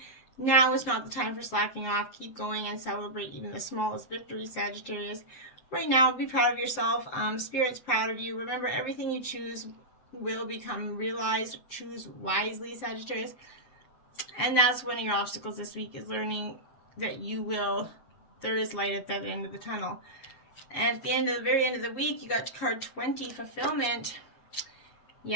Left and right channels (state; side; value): late; right; 7.5 ms